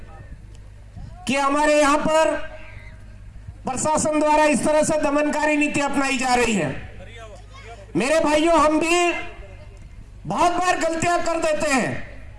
कि हमारे यहां पर प्रशासन द्वारा इस तरह से दमनकारी नीति अपनाई जा रही है। मेरे भाइयों, हम भी बहुत बार गलतियां कर देते हैं।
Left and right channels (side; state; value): both; identical; correlation 1.00